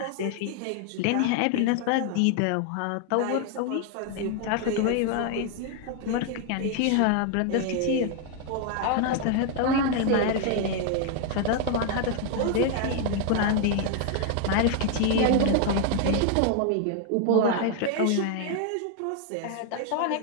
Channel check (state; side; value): different; both; correlation 0.00